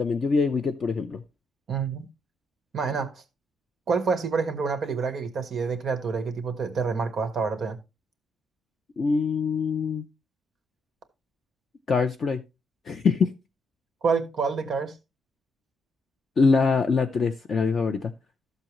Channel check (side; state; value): both; normal; correlation 0.76